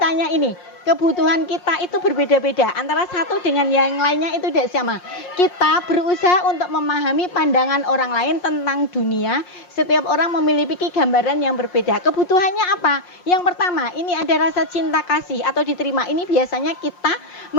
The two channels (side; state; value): right; late; 5.6 ms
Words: ini, kebutuhan kita itu berbeda-beda. Antara satu dengan yang lainnya itu tidak sama. Kita berusaha untuk memahami pandangan orang lain tentang dunia. Setiap orang memiliki gambaran yang berbeda. Kebutuhannya apa? Yang pertama, ini ada rasa cinta kasih atau diterima. Ini biasanya kita